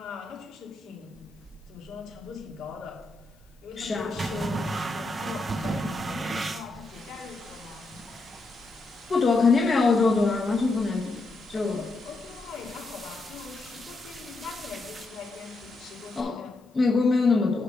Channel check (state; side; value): quieter; right; 3.2 dB